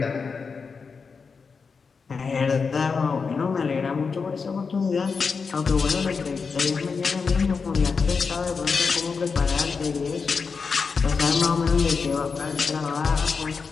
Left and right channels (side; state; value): right; quieter; 5.2 dB